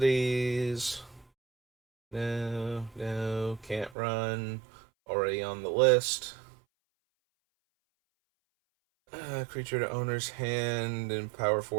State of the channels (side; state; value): left; drops out; at 4.0 s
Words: No, can't run. Already on the list. Creature to owner's hand and power